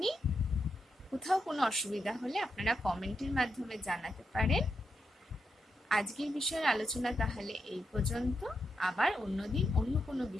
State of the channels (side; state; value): both; normal; correlation 0.84